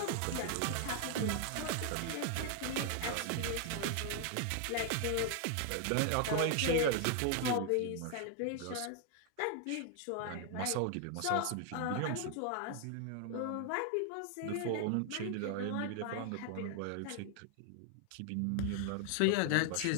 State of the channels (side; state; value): both; different; correlation 0.00